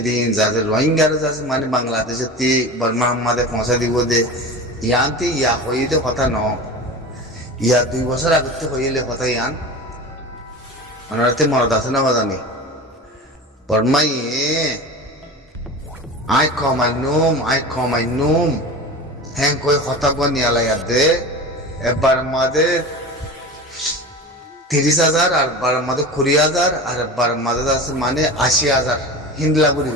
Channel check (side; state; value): both; normal; correlation 0.31